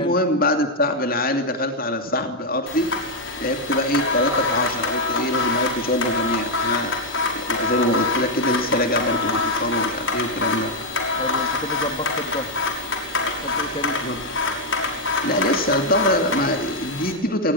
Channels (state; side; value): normal; both; correlation 0.00